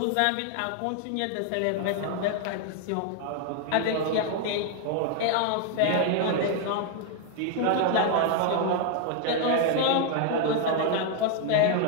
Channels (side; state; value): both; different; correlation 0.00